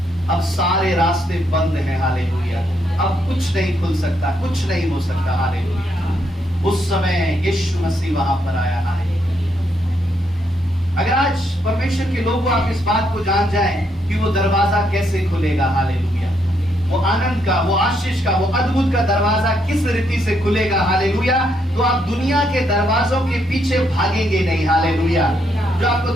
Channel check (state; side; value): normal; both; correlation 0.76